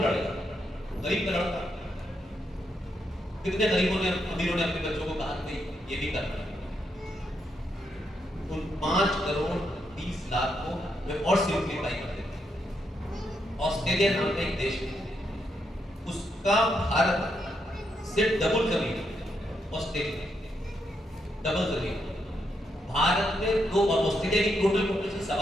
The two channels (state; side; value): normal; both; correlation 0.80